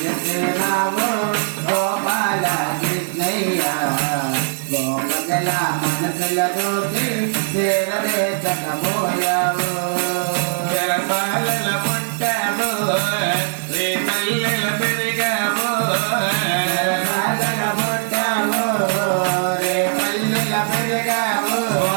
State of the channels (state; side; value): silent; left; digital silence